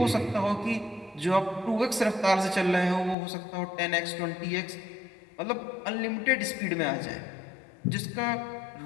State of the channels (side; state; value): right; drops out; at 3.2 s